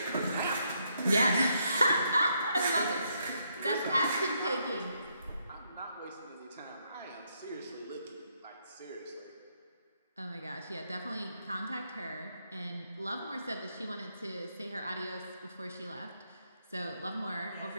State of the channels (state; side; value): inverted; both; correlation -0.76